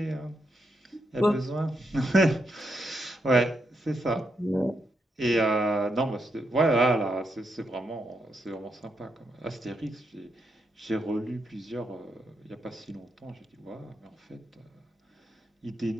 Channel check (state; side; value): normal; both; correlation 0.82